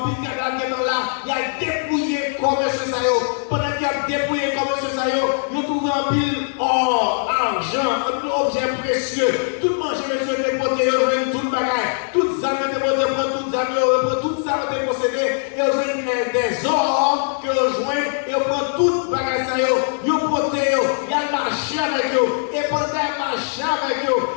pile cadavre qui est là, il a dépouillé comme ce saillot. Pendant qu'il a dépouillé comme ce saillot, il a trouvé un pile or, argent, un pile objet précieux. Tout manger, monsieur, déporté, tout le bagage, toutes les armes déportées, toutes les armes, toutes les armes dépossédées, et des or que rejoint, et on prend tout le bagage, il a porté, il a marché avec eux, et pendant qu'il marché avec eux,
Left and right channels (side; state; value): right; silent; digital silence